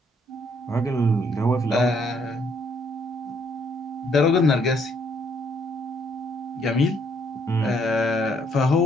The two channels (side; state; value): both; normal; correlation 0.68